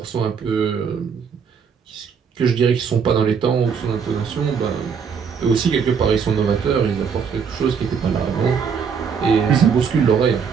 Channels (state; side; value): quieter; left; 6.5 dB